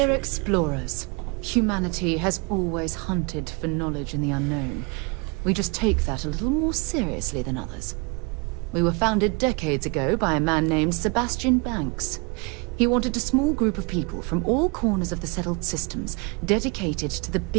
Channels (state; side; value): quieter; left; 31.0 dB